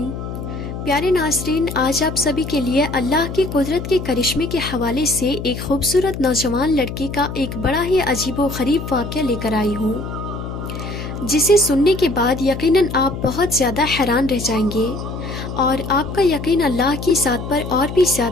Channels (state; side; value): noise; left; hum, 7 dB below the sound